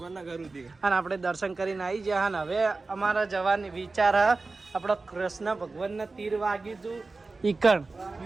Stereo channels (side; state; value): left; quieter; 3.7 dB